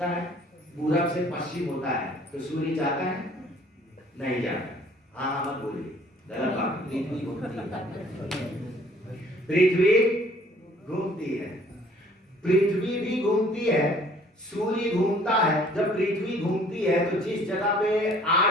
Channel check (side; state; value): both; normal; correlation 0.56